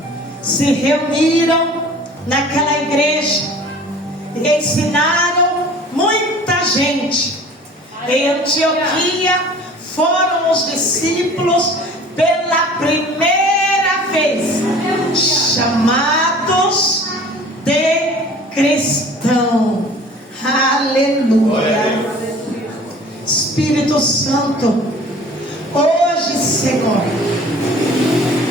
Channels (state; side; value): normal; both; correlation 0.46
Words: se reuniram naquela igreja e ensinaram muita gente. Em Antioquia foram os discípulos pela primeira vez chamados de cristão. Aleluia. Espírito Santo, hoje, Senhor,